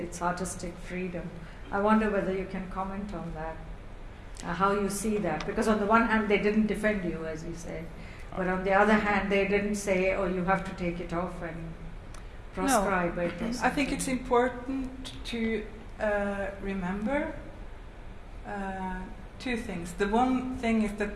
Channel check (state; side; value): identical; both; correlation 1.00